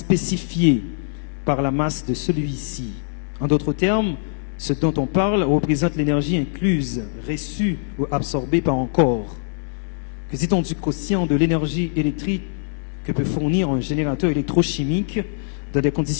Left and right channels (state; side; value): silent; right; 64 dB below the other